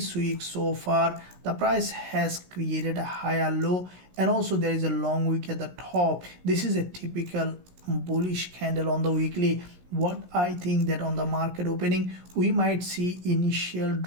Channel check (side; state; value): left; late; 16 ms